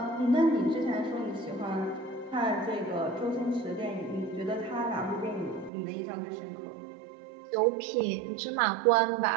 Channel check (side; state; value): left; drops out; at 5.7 s